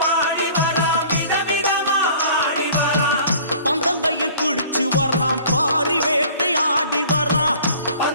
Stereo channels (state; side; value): inverted; both; correlation -0.48